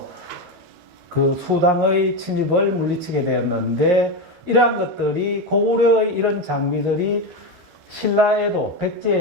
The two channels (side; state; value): left; late; 13 ms